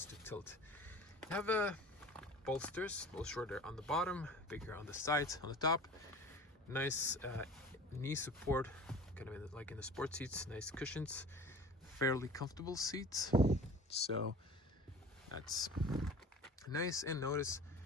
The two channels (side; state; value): both; normal; correlation 0.41